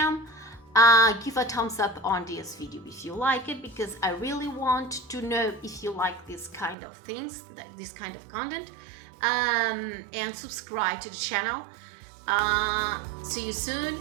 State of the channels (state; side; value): drops out; left; at 6.8 s